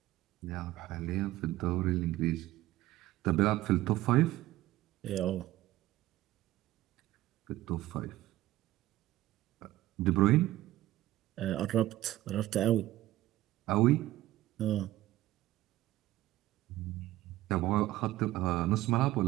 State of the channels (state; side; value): quieter; left; 15.9 dB